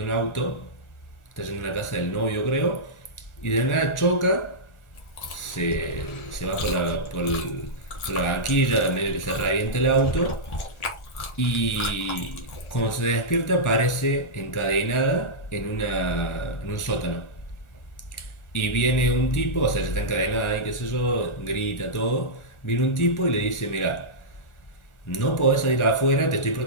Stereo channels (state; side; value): late; right; 1.4 ms